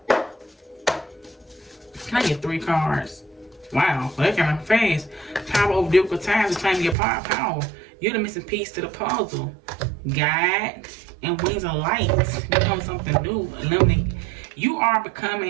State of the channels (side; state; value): left; drops out; at 7.0 s